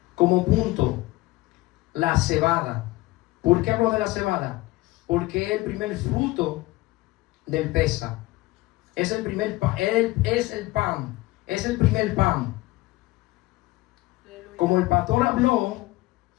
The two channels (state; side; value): quieter; right; 19.8 dB